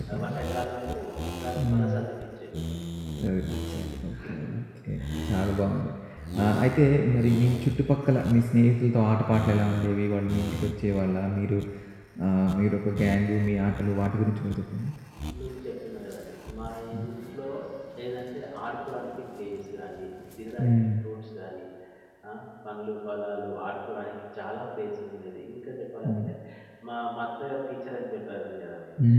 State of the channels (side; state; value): both; identical; correlation 1.00